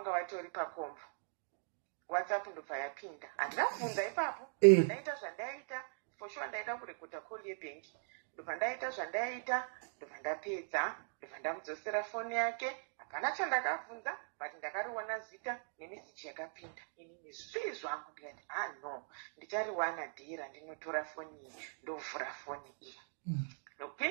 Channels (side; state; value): left; silent; digital silence